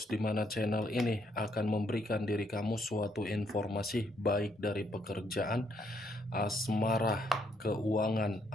di mana channel ini akan memberikan diri kamu suatu informasi baik dari pekerjaan, asmara, keuangan,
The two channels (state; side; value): normal; both; correlation 0.72